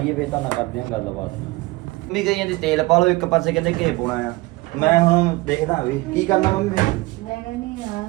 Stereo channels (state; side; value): quieter; left; 21.8 dB